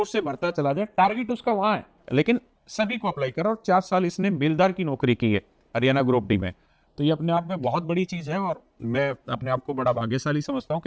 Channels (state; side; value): identical; both; correlation 1.00